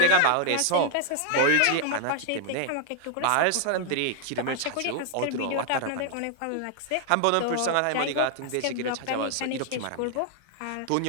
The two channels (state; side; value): different; both; correlation 0.00